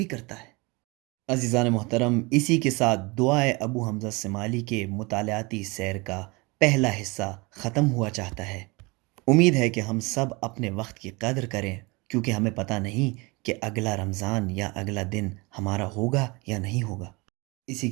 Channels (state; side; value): quieter; left; 26.2 dB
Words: کرتا ہے۔ عزیزان محترم، اسی کے ساتھ دعائے ابو حمزہ سمالی کے مطالعاتی سیر کا پہلا حصہ ختم ہوا چاہتا ہے۔ امید ہے کہ ہم سب اپنے وقت کی قدر کریں، کیونکہ ہمیں پتہ نہیں کہ اگلا رمضان یا اگلا دن ہمارا ہوگا یا نہیں ہوگا۔ اسی